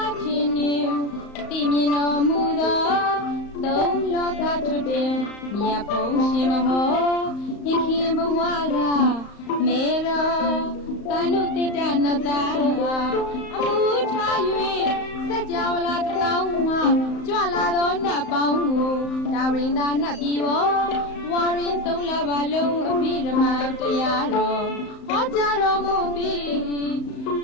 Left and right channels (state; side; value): late; right; 35 ms